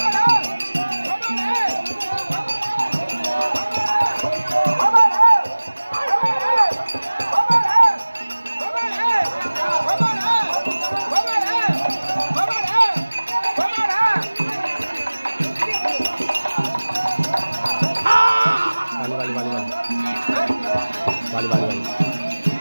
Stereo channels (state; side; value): inverted; both; correlation -1.00